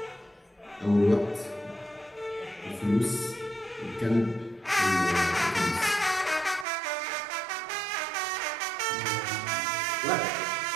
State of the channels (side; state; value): left; drops out; at 6.7 s